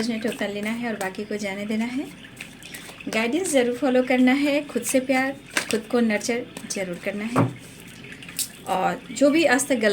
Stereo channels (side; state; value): both; identical; correlation 1.00